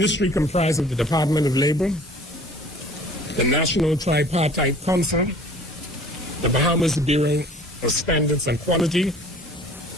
comprises of the Department of Labor, the National Tripartite Council, the Bahamas Bureau of Standards and Quality,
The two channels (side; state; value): both; normal; correlation 0.49